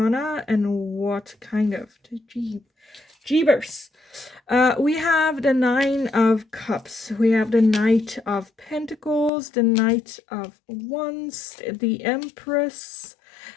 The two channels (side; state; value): right; drops out; at 9.3 s